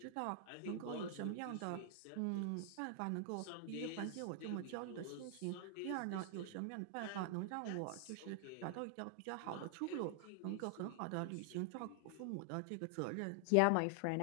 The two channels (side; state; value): both; different; correlation 0.00